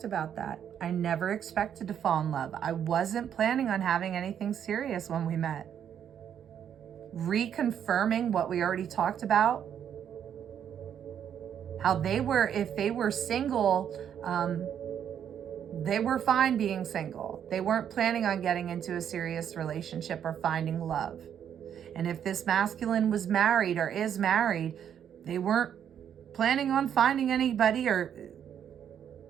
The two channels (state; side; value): quieter; left; 9.0 dB